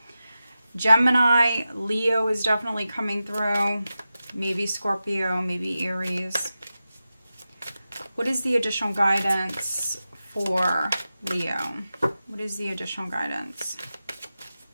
Gemini, Leo is definitely coming through. Maybe Scorpio, maybe Aries. What is the additional guidance for Leo? What is the additional guidance?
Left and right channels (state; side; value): inverted; both; correlation -0.93